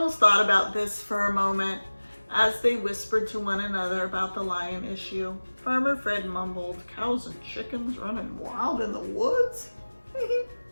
thought about this for a moment as they whispered to one another about the lion issue. Farmer Fred mumbled, "Cows and chickens running wild in the woods?"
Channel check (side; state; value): both; inverted; correlation -1.00